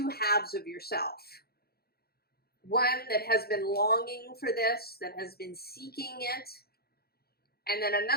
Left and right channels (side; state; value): right; late; 0.45 ms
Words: halves of yourself. One that has been longing for this, that has been seeking it. And then